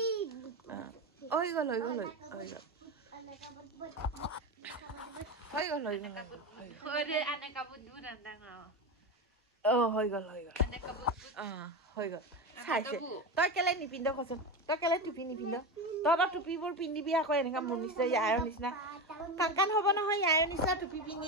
হৈ গ'ল চাইছে তই কেলে নিপিন্ধ কচোন তই কেলে টুপি নিপিন্ধ তহঁতৰ টুপিবোৰ পিন্ধিবি আকৌ এনেকা মোৰ নিচিনা ইয়াৰ নিচিনা কাণ হ'ব নহয় ইয়াৰ নিচিনা টুপি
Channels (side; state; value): both; normal; correlation 0.19